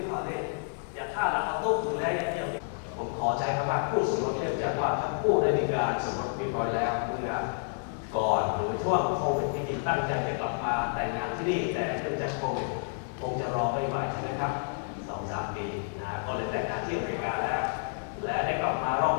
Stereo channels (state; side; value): silent; right; 58 dB below the other